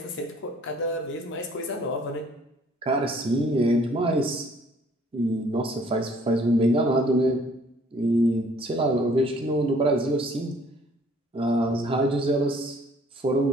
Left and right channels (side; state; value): both; normal; correlation 0.58